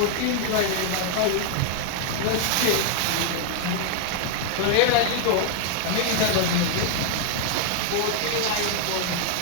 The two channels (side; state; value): both; different; correlation 0.00